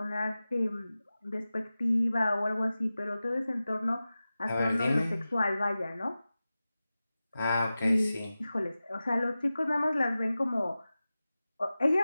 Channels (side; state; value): both; inverted; correlation -0.95